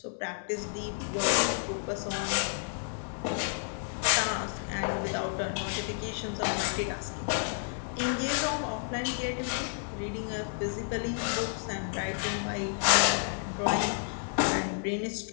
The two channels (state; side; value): silent; right; digital silence